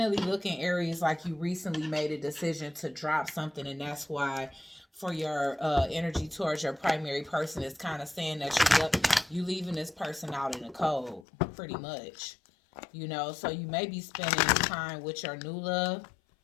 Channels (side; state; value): right; drops out; at 11.2 s